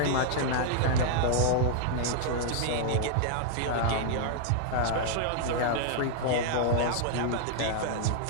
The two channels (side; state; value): both; different; correlation -0.01